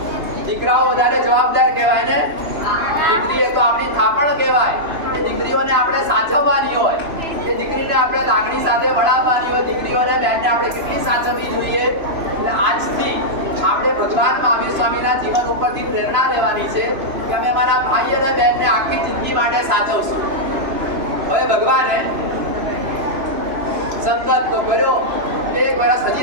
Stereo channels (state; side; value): late; left; 3.0 ms